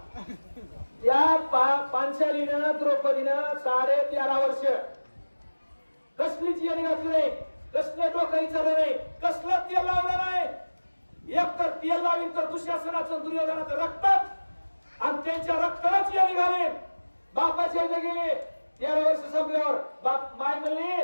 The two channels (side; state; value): both; inverted; correlation -1.00